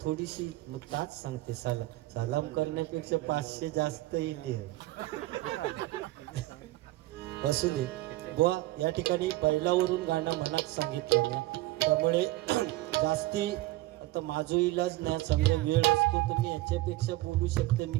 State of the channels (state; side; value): quieter; left; 18.2 dB